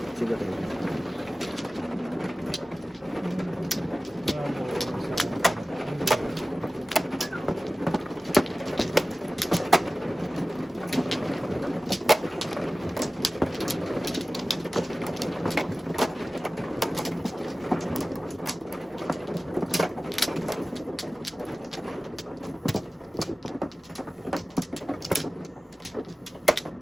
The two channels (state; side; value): normal; both; correlation 0.97